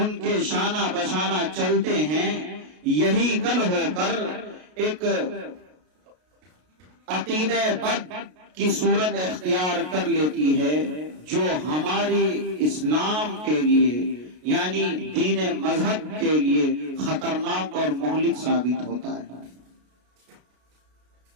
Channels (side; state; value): left; late; 33 ms